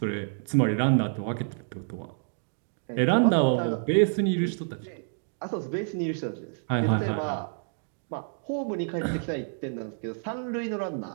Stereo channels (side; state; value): left; silent; digital silence